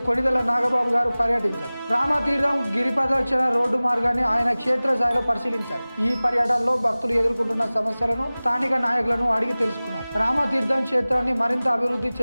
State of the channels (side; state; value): both; inverted; correlation -0.99